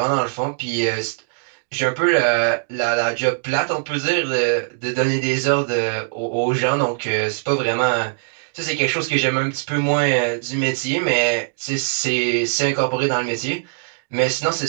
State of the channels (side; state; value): left; silent; digital silence